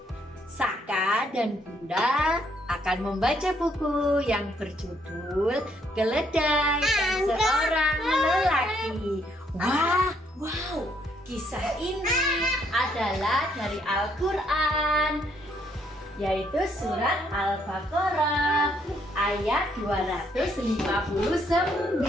Saka dan Bunda akan membaca buku yang berjudul Keledai dan Seorang Lelaki. Wow, kisah ini adalah dari Al-Quran, yaitu surat Al-Baqarah ayat 259.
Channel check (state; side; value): normal; both; correlation 0.70